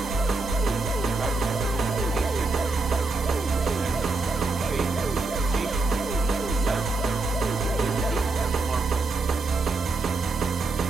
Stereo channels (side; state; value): left; quieter; 3.6 dB